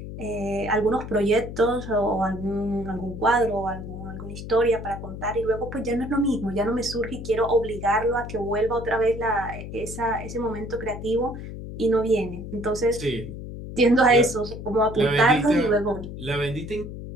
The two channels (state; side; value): noise; left; hum, 9 dB below the sound